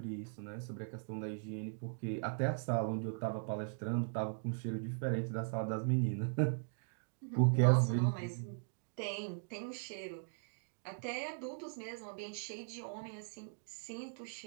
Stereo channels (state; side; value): silent; left; digital silence